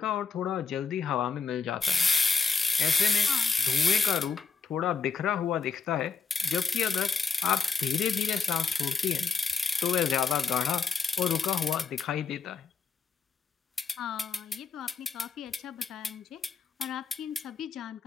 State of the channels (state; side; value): quieter; right; 5.3 dB